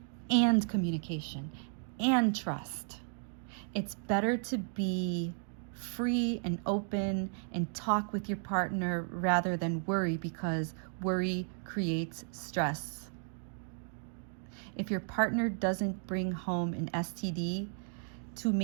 and communication and trust. It's better to be free and open and talk with your partner rather than worry, because worry creates stress. If your partner doesn't bring home an STD to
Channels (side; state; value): left; silent; 55 dB below the other